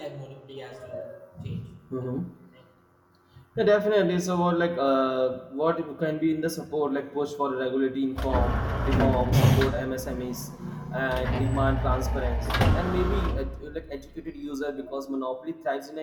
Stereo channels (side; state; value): both; identical; correlation 1.00